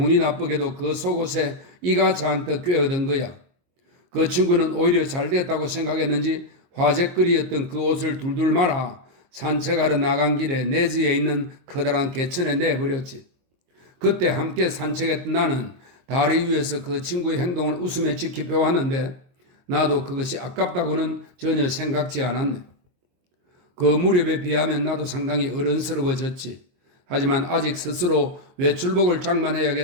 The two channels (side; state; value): left; late; 22 ms